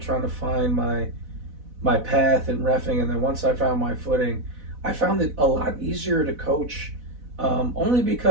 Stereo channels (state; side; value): late; left; 4.0 ms